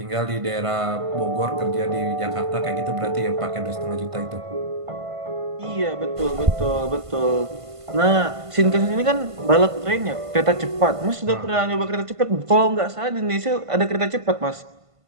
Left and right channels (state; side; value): late; left; 1.5 ms